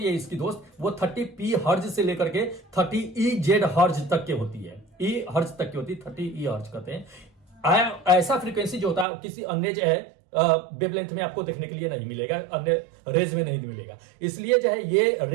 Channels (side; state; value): left; drops out; at 9.1 s